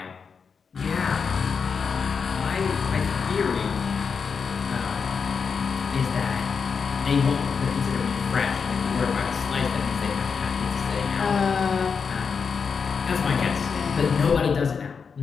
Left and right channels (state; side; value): quieter; right; 5.8 dB